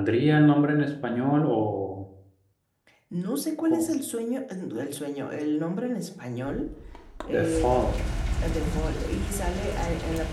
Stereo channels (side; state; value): both; identical; correlation 1.00